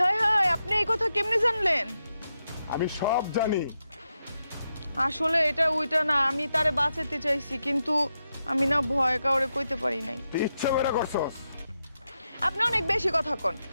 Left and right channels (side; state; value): both; inverted; correlation -0.86